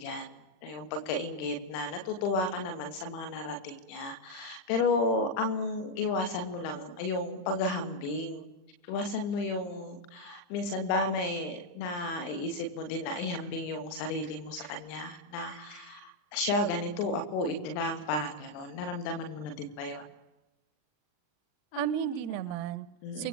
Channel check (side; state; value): right; late; 40 ms